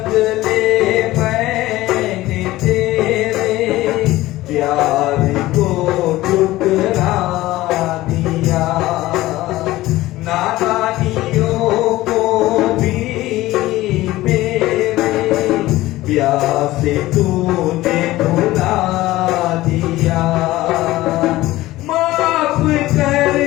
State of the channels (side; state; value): right; quieter; 17.2 dB